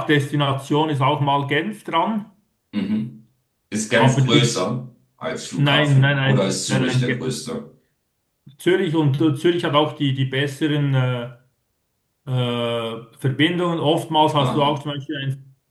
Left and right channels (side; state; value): both; identical; correlation 1.00